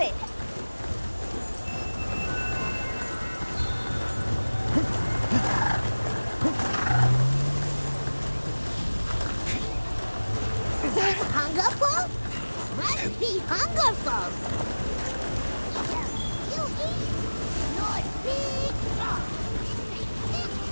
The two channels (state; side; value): inverted; both; correlation -1.00